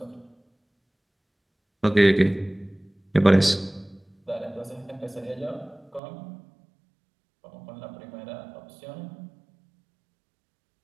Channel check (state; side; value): drops out; left; at 6.0 s